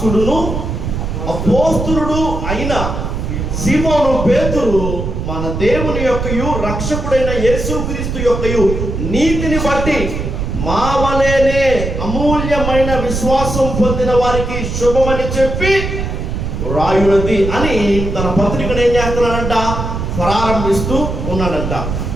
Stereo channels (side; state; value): right; noise; rumble, 3 dB below the sound